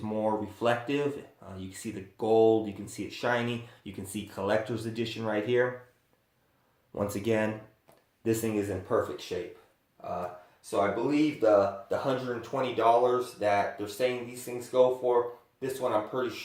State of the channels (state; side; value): identical; both; correlation 1.00